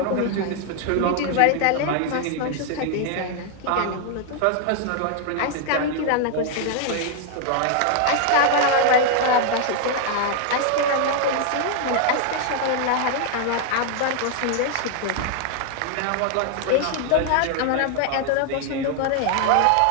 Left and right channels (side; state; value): both; different; correlation 0.00